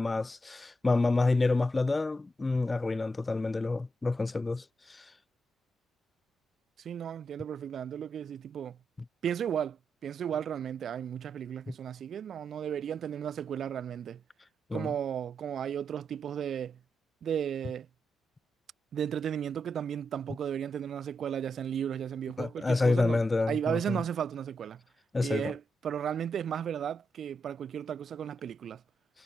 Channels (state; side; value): normal; both; correlation 0.84